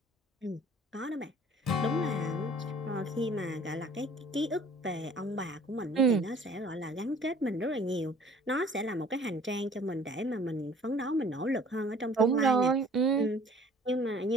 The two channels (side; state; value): both; normal; correlation 0.52